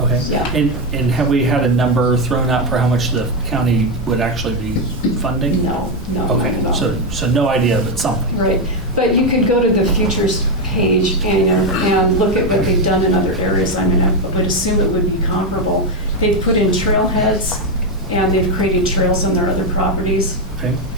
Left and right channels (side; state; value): both; normal; correlation 0.06